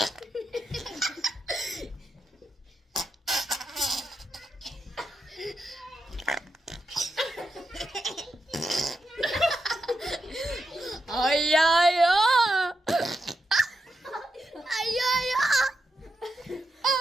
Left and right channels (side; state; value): both; normal; correlation 0.86